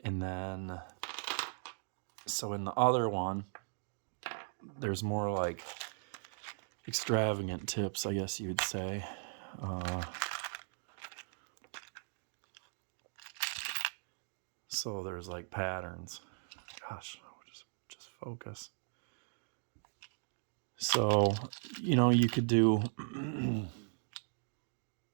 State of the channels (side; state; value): left; silent; digital silence